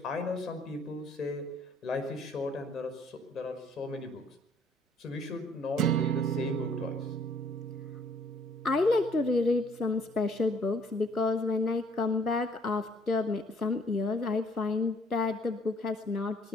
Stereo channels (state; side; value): normal; both; correlation 0.61